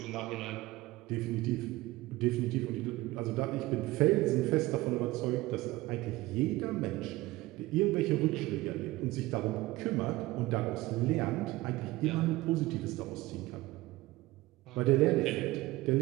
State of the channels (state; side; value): quieter; left; 19.0 dB